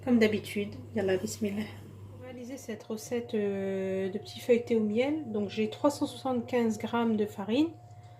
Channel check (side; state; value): both; identical; correlation 1.00